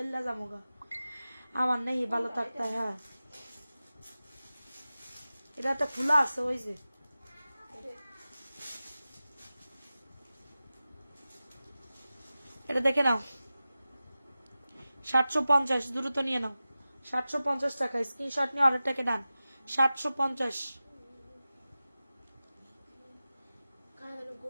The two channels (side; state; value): both; inverted; correlation -0.95